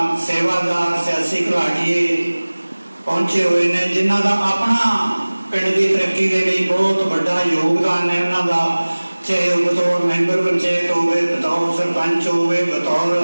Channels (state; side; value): inverted; both; correlation -1.00